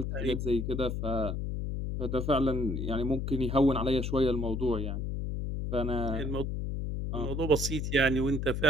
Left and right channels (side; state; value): left; noise; hum, 2 dB below the sound